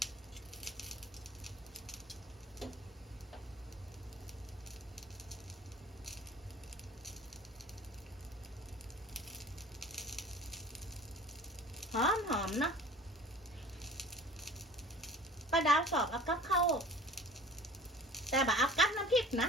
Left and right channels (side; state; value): both; normal; correlation 0.44